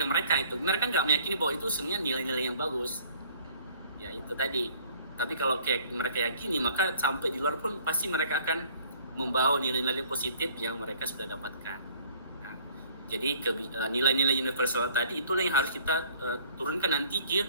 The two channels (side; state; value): both; inverted; correlation -0.55